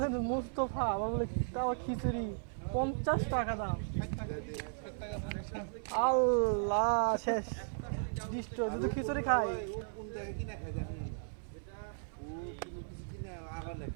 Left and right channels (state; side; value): silent; left; 54 dB below the other